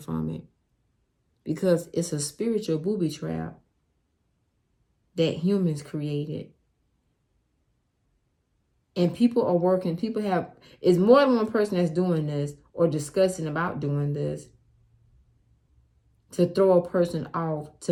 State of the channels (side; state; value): both; identical; correlation 1.00